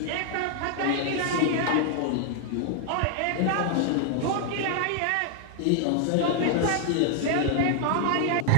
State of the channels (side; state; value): both; different; correlation 0.00